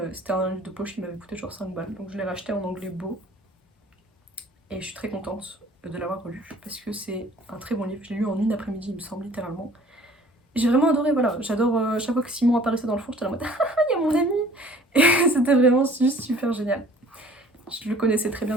c'était un livre de poche qui m'avait coûté genre 5 balles, donc je l'ai racheté en anglais beau et je suis très contente de l'avoir relu parce que c'est un très bon livre. Je l'ai lu en une après-midi, il me semble, littéralement. J'ai vraiment adoré, voilà. J'adore chaque fois que Simon apparaissait dans le fond, j'étais en mode ah, il y a mon ami. Et c'était vraiment juste super génial. Je le connaissais très bien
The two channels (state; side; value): normal; both; correlation 0.52